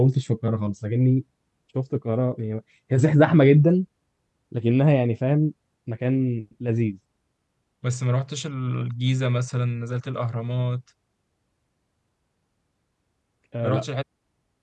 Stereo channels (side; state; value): both; identical; correlation 1.00